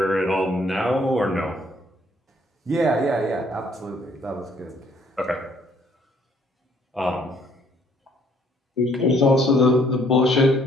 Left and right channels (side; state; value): both; normal; correlation 0.64